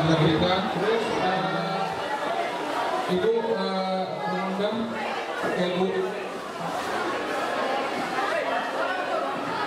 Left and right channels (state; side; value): identical; both; correlation 1.00